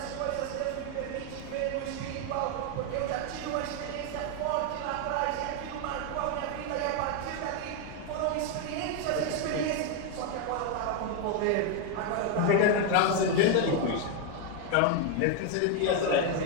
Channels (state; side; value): different; both; correlation 0.01